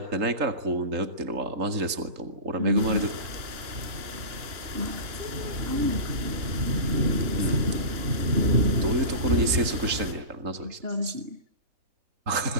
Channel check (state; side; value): late; left; 3.8 ms